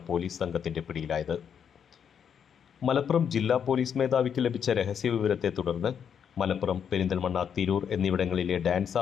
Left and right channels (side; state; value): right; quieter; 7.8 dB